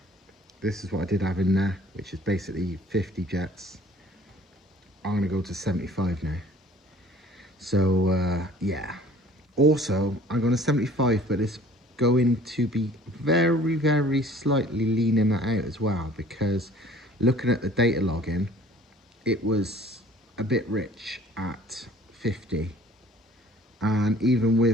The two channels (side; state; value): both; normal; correlation 0.51